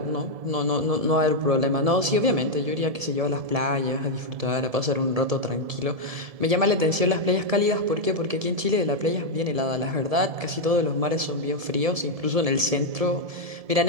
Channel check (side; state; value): left; late; 1.7 ms